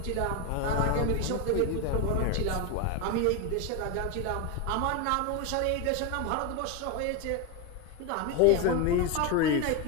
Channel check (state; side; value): different; both; correlation 0.02